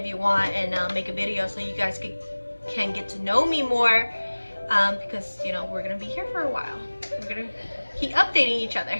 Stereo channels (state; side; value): inverted; both; correlation -1.00